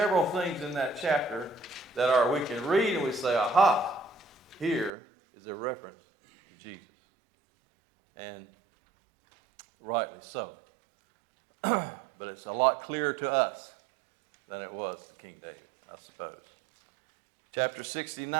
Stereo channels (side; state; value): left; drops out; at 4.9 s